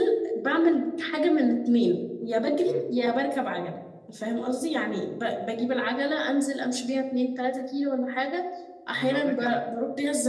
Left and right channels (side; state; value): both; identical; correlation 1.00